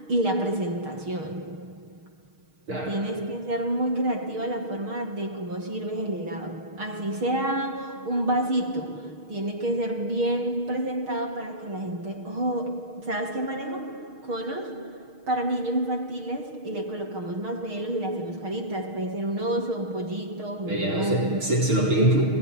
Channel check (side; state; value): left; late; 6.4 ms